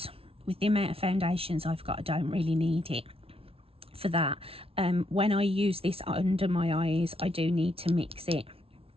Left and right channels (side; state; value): left; late; 0.27 ms